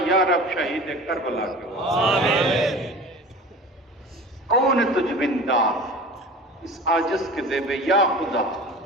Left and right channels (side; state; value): both; normal; correlation 0.38